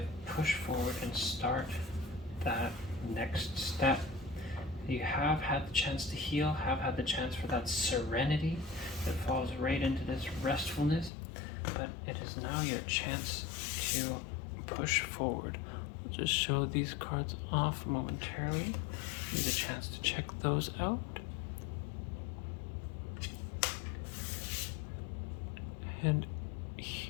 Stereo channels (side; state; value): right; drops out; at 11.1 s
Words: push forward and start that next step. You have had the chance to heal, have had the chance for that serenity that falls right into this restfulness, but it is now your chance to push forward. I'll just show these cards off momentarily. Need a chance to check those out. And